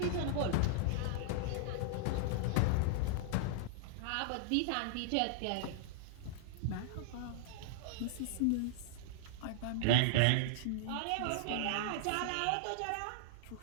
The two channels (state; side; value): different; both; correlation -0.01